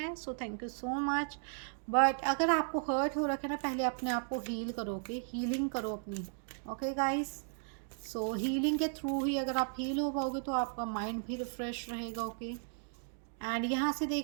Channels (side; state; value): left; silent; digital silence